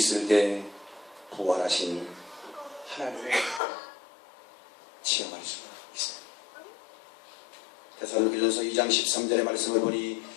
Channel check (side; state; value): right; drops out; at 3.6 s